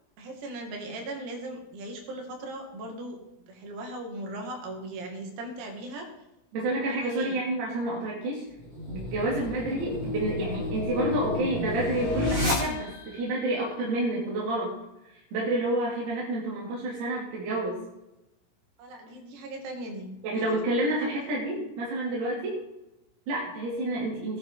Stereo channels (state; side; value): late; left; 17 ms